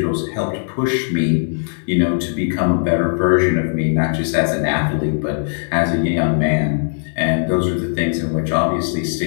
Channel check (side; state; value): right; silent; digital silence